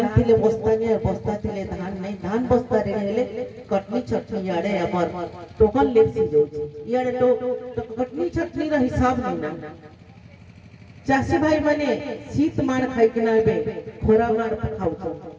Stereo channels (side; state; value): both; identical; correlation 1.00